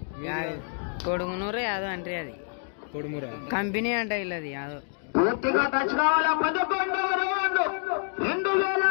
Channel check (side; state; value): right; silent; 60 dB below the other